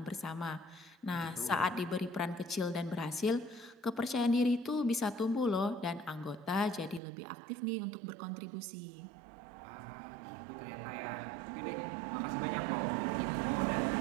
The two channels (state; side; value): drops out; left; at 7.0 s